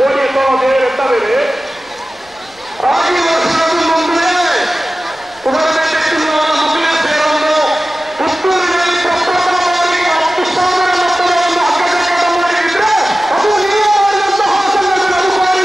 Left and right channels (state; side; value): noise; left; rumble, 30 dB below the sound